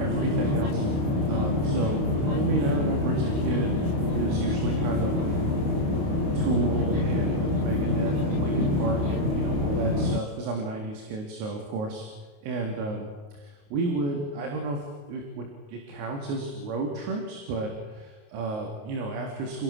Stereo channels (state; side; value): late; left; 28 ms